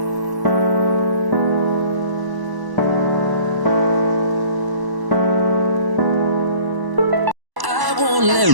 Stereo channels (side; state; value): left; late; 1.1 ms